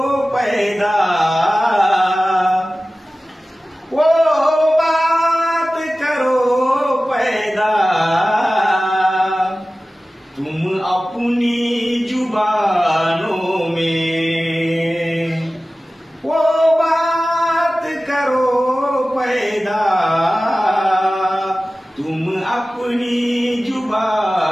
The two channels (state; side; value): normal; both; correlation 0.96